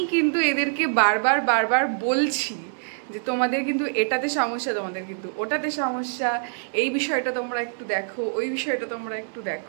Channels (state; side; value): silent; left; 62 dB below the other